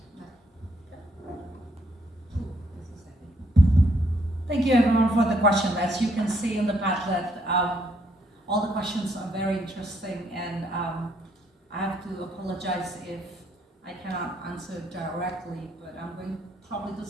Thank you everyone for the question. As you can see in the Padlet, all the questions are very interesting, and I have to apologize if I cannot answer directly, but I'm going probably to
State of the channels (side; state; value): both; normal; correlation 0.71